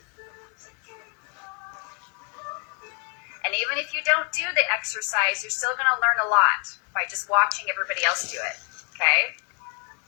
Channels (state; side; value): quieter; right; 37.3 dB